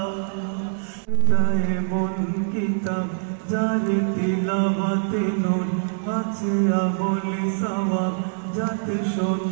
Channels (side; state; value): left; silent; digital silence